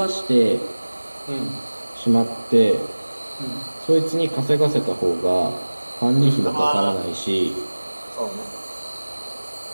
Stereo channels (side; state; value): both; inverted; correlation -1.00